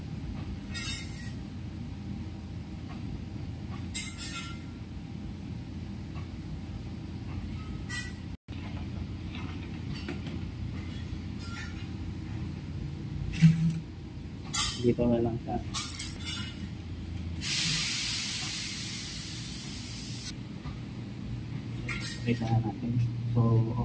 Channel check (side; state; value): both; identical; correlation 1.00